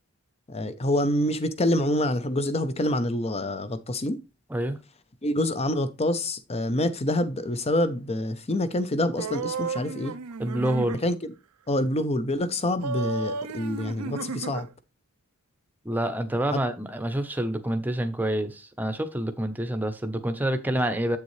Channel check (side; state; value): both; normal; correlation 0.61